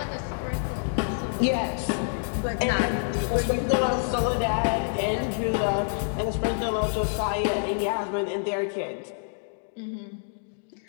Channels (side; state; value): right; silent; digital silence